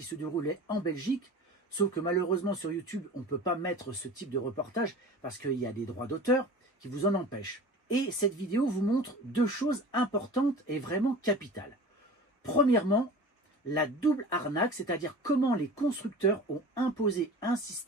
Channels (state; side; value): normal; both; correlation 0.38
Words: se déroulait en Belgique, sauf que malheureusement sur YouTube, on ne peut pas mettre ce type de reportage parce qu'il y a des droits d'auteur qui vous en empêchent. Et cette vidéo vous montre deux choses importantes et vraiment capitales. Premièrement, la double arnaque, c'est-à-dire comment les constructeurs ont imposé un